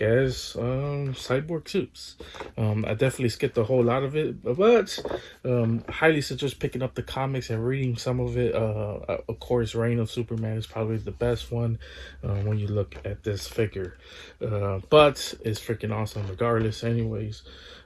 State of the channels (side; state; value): both; identical; correlation 1.00